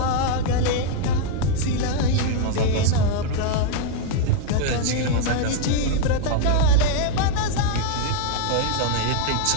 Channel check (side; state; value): both; different; correlation 0.00